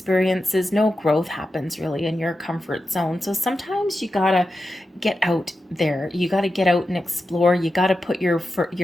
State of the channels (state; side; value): normal; both; correlation 0.90